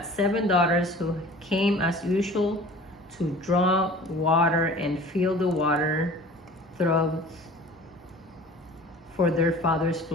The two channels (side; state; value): both; normal; correlation 0.44